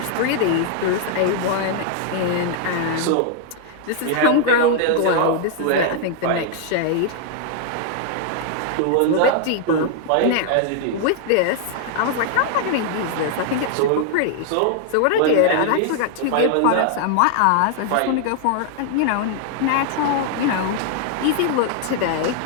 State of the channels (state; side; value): different; both; correlation 0.00